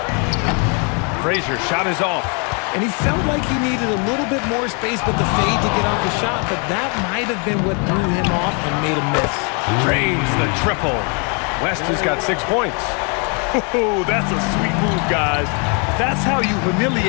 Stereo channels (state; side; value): quieter; right; 36.0 dB